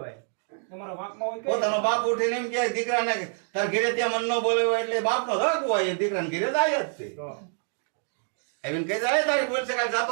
પોતાનો બાપ ઉઠીને એમ કે દીકરાને તાર ઘરે ત્યાં મન ન બોલાવ્યો એટલે બાપનો હક હોય એ દીકરાને ઘરે જાય જ તે આવીને કહી જાય તારી બોલ શકાય જાતો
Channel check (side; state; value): left; silent; 60 dB below the other